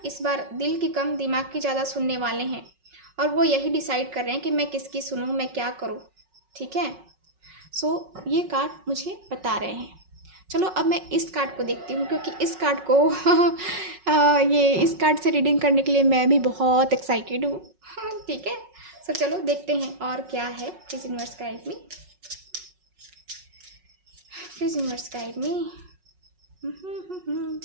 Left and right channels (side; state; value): left; late; 5.4 ms